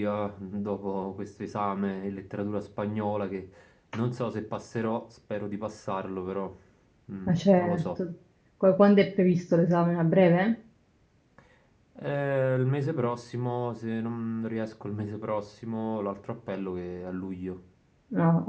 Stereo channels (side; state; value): both; identical; correlation 1.00